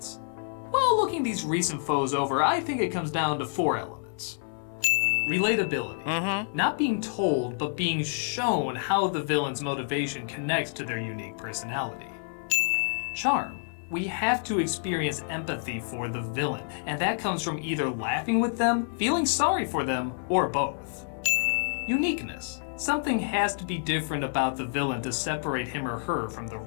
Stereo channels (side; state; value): right; silent; 59 dB below the other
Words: Well, looking these recent foes over, I think it comes down to 4 elements. Relatability. Not being told, but being shown how the villain's motivation connects to their unique personality. Charm. We have to experience empathy for the villain, and that comes from either laughing with them, feeling sorry for them, or both. Uniqueness. Something has to be different about the villain to separate him or her from the